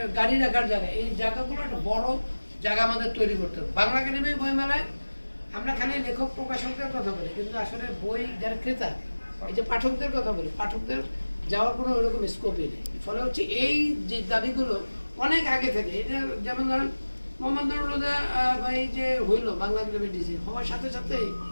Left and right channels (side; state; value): both; inverted; correlation -1.00